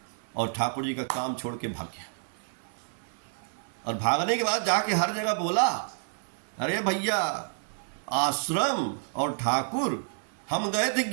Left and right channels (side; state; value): left; silent; 57 dB below the other